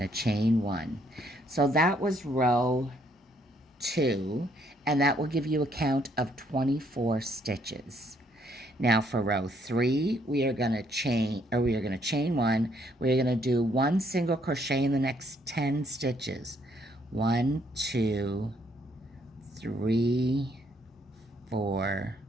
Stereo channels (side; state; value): both; normal; correlation 0.69